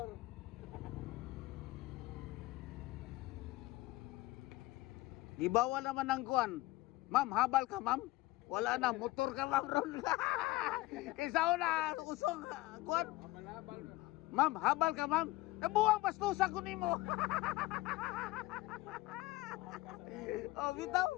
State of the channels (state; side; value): quieter; right; 19.2 dB